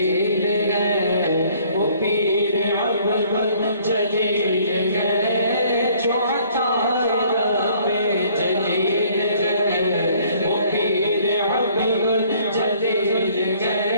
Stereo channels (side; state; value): both; inverted; correlation -0.59